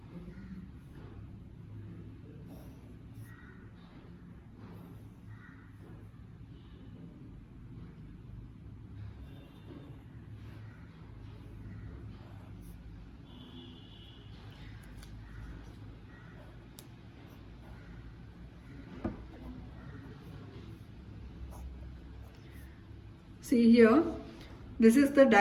See here, this is the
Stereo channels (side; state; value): both; identical; correlation 1.00